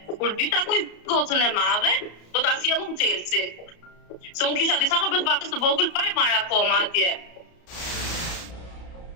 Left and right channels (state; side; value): late; right; 34 ms